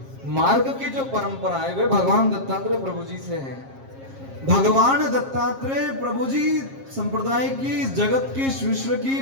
मार्ग की जो परंपरा है वे भगवान दत्तात्रेय प्रभु जी से है। भगवान दत्तात्रेय प्रभु जी संप्रदाय की, जगत की, विश्व की,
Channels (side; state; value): left; late; 7.4 ms